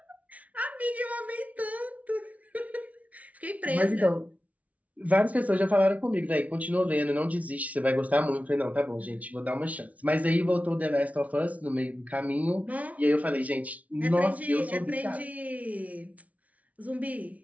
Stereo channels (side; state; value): left; late; 0.069 ms